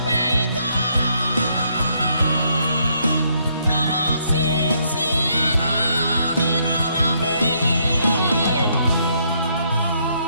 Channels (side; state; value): both; inverted; correlation -0.72